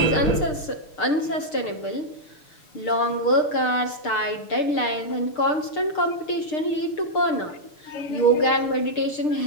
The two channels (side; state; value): right; late; 6.6 ms